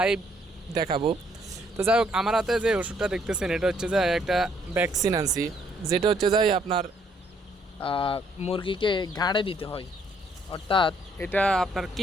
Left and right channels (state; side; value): normal; both; correlation 0.67